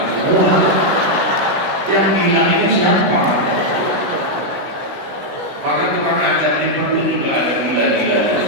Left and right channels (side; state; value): left; late; 16 ms